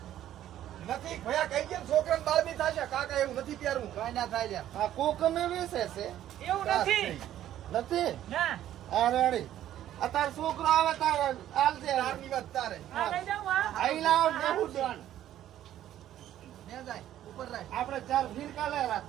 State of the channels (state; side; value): quieter; left; 12.1 dB